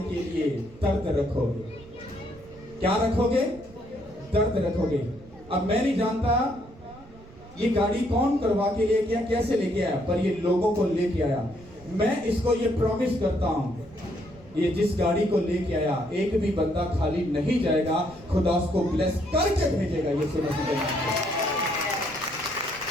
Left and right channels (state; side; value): noise; right; rumble, 21 dB below the sound